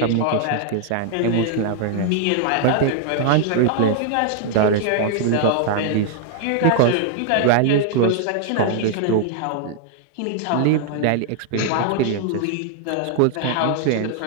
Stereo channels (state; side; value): different; both; correlation 0.00